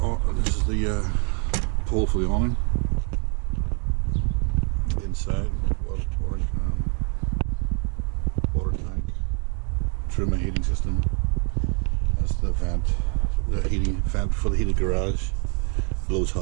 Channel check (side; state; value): left; quieter; 38.9 dB